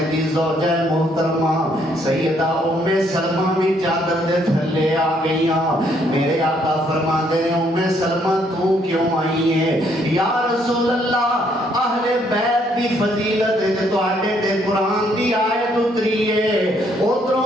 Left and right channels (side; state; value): both; normal; correlation 0.69